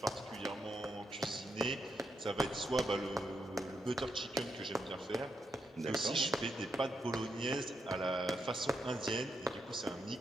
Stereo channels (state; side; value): normal; both; correlation 0.81